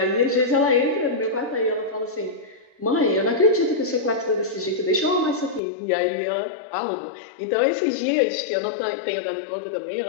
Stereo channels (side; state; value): right; drops out; at 5.6 s